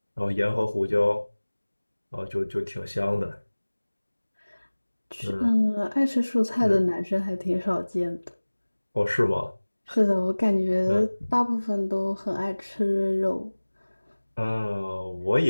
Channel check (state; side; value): inverted; both; correlation -1.00